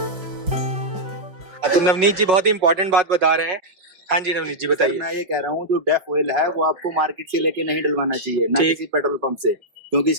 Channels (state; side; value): late; left; 5.4 ms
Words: तो नवनीत जी बहुत ही इंपॉर्टेंट बात बता रहे हैं। हाँ जी नवनीत जी बताइए। मैं ये कह रहा हूँ जो डेफ ऑयल है वो आपको मार्केट से लेके नहीं डलवाना चाहिए, ना किसी पेट्रोल पंप से, क्योंकि